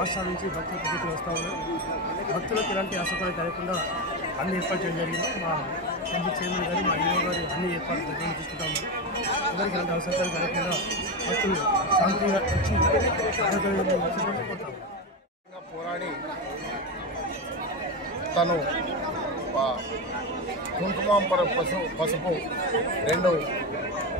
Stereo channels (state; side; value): normal; both; correlation 0.15